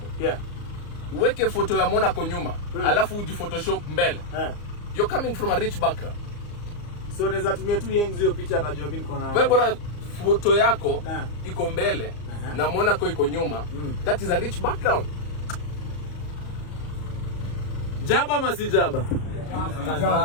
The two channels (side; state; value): right; late; 34 ms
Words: Yeah. Uweke photo ya Monaco nyuma. Alafu uji Photoshop mbele. You're coming from a rich background. So naweza tumia tu Yengs hiyo picha atajua mimi niko na. Wewe bora photo yako iko mbele na Monaco iko nyuma. That is a rich background. Jaba ama si Jaba?